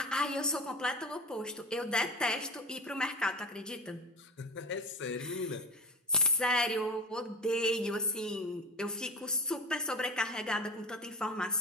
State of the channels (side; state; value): both; normal; correlation 0.31